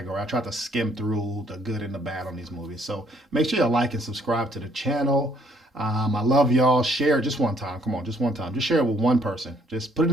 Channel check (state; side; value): normal; both; correlation 0.65